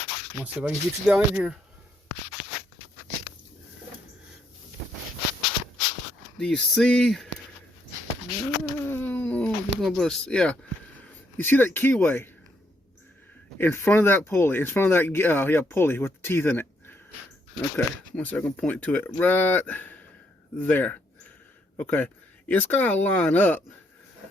let's see if I can get you down in here. Do you see? Yeah. You see that keyway in front of that pulley, in front of that pulley with the teeth in it. Okay, one second, point to it right there. Okay, it's got to line up.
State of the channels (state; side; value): normal; both; correlation 0.74